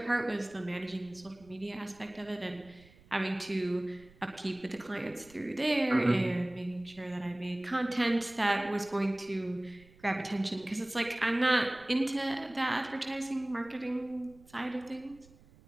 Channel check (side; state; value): right; noise; rumble, 25 dB below the sound